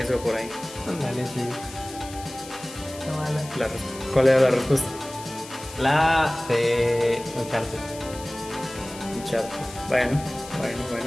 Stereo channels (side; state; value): left; noise; hiss, 15 dB below the sound